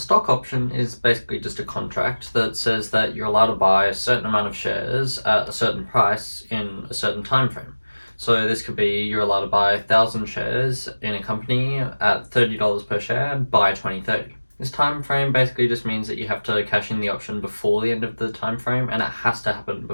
option is basically just a contract that says that you're allowed to buy a certain amount of shares at a certain price in a certain time frame. So this could be you're allowed to buy 1,000 shares in a company at $30 per share by 2030. This time frame basically just means that you have to cash in the option before the end of the time frame, and it has to happen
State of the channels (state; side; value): inverted; both; correlation -1.00